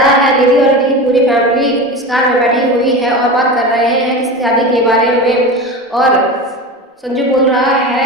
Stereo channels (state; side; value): normal; both; correlation 0.27